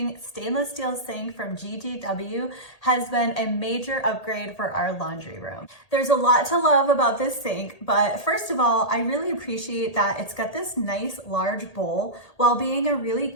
stainless steel sink from GGW has been a major upgrade for our laundry room. There's a lot to love about this sink, but first of all, I really appreciate that it's got this nice large bowl while being a really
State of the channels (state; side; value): late; right; 1.8 ms